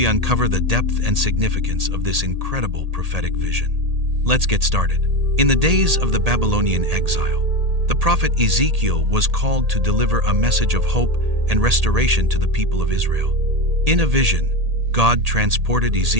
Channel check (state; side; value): late; left; 1.8 ms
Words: uncover the depth and significance of this incredible prophetic vision. Let's get started. In the days of the Babylonian exile, the prophet Ezekiel was called to deliver a message of hope and restoration to the people of Israel. In a vision, God transported